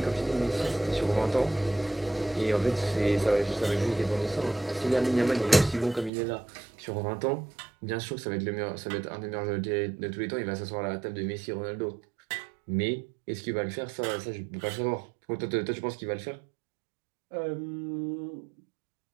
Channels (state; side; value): drops out; left; at 6.1 s